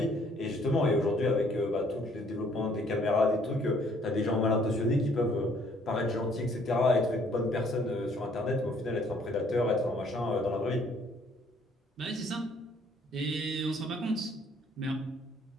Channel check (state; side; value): normal; both; correlation 0.62